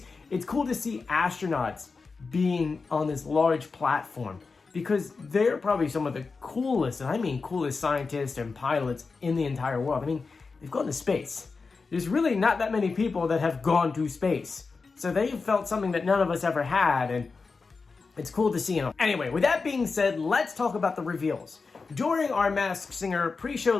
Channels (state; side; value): quieter; right; 4.5 dB